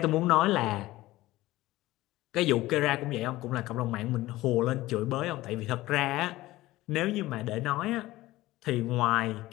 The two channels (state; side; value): quieter; right; 17.4 dB